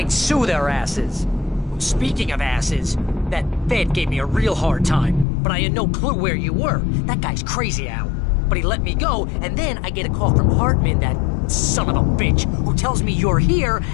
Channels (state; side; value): drops out; right; at 5.2 s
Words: sue their asses. Speaking of asses, that Fed gave me a real hard time, but I had no clue where you were. That guy's crazy, Al. But he let me go, and then I get a call from Hartman, that son of a bitch, who tells me you're here,